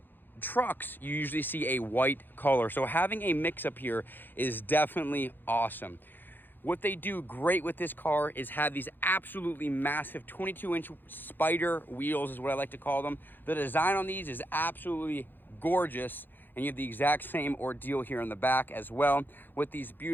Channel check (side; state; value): right; late; 0.092 ms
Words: trucks, you usually see a white color. So having a mix up here is definitely awesome. What they do great with this car is have these absolutely massive 22-inch spider wheels, is what I like to call them. The design on these is absolutely gorgeous, and you have the exact same ordeal here in the back as well, with these